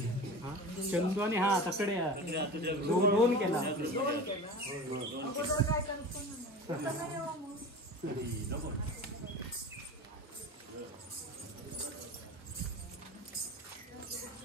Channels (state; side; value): normal; both; correlation 0.33